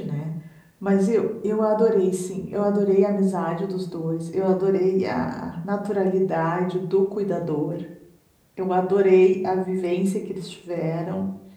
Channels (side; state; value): both; identical; correlation 1.00